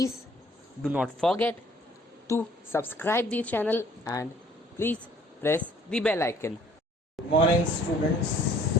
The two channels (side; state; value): both; normal; correlation 0.57